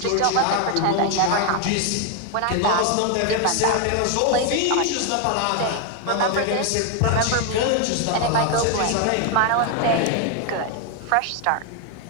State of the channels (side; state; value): both; different; correlation 0.01